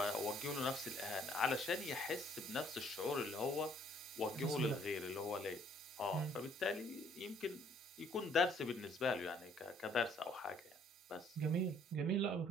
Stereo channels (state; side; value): normal; both; correlation 0.62